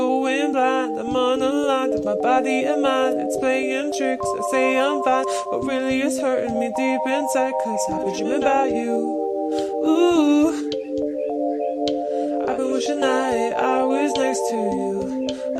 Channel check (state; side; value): identical; both; correlation 1.00